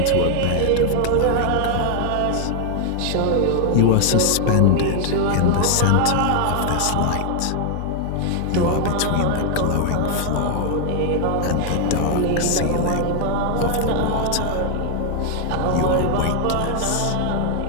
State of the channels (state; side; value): different; both; correlation 0.00